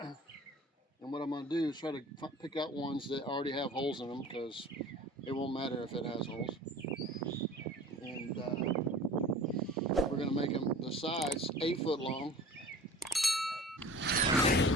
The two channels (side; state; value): both; normal; correlation 0.42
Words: what I'm going to do is try to pick out ones that already have holes in them, because it won't matter if it has holes. And we're going to make them the sides 8 foot long,